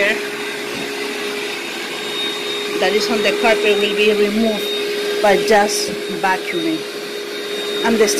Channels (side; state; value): both; identical; correlation 1.00